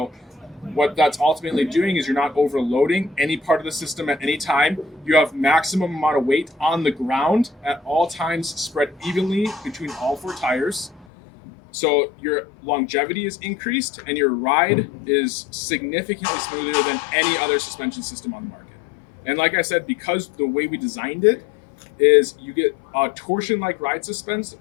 What that's ultimately doing is you're not overloading any part of the system at any time. You have maximum amount of weight on the ground at all times, spread evenly between all 4 tires. So your longevity is increased and your ride is significantly smoother than any other suspension system on the market. And like I said, because the way we designed it is you get a torsion-like ride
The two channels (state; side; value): drops out; right; at 11.1 s